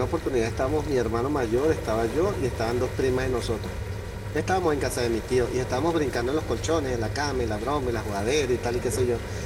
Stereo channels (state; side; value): identical; both; correlation 1.00